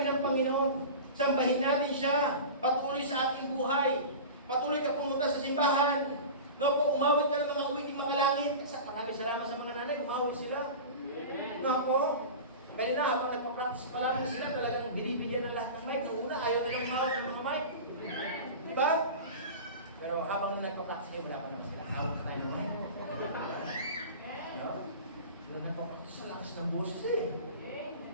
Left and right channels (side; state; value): both; inverted; correlation -0.32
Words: ng Panginoon, sambahin natin siya, patuloy sa ating buhay, patuloy ka pumunta sa simbahan, umawit ka ng mga awiting mga langit. Maraming salamat sa mga nanay, umawit sila. Kaya na, habang nagpa-practice pa lang sila, talagang binibigyan ng lahat ng mic. Noong una, ayaw nilang umawit ng mga mic. Diba? Pero habang nagpa-practice kayo, wala pa naman sila. Awit na tayo ng mic. Nung nagpapractice sa lakas ng boses eh.